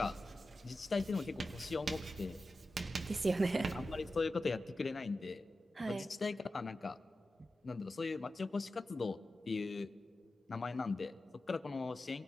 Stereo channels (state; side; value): normal; both; correlation 0.92